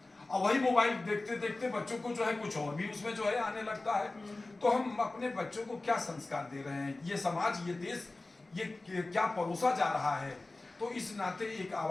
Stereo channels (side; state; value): right; quieter; 3.1 dB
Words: और वही मोबाइल देखते देखते बच्चों को जो है कुछ और भी उसमें जो है आने लगता है। तो हम अपने बच्चों को क्या संस्कार दे रहे हैं, ये समाज, ये देश, ये क्या परोसा जा रहा है। तो इस नाते एक